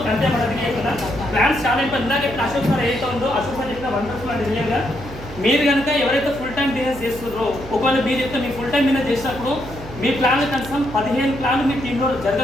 అంతే మనకి చెప్తున్నా ప్లాన్స్ చాలా ఇంపార్టెంట్. ఇందాక చెప్పిన అశోక్ సార్ ఏదైతే ఉందో అశోక్ సార్ చెప్పిన వండర్ఫుల్ అంటే రియల్గా మీరు కనుక ఎవరైతే ఫుల్ టైం బిజినెస్ చేస్తున్నారో, ఒకవేళ మీరు చెప్తే మీ ఫుల్ టైం బిజినెస్ చేసినప్పుడు మీ ప్లాన్లు కనీసం 15 ప్లాన్లు మీ టీంలో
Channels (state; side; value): noise; right; hum, 14 dB below the sound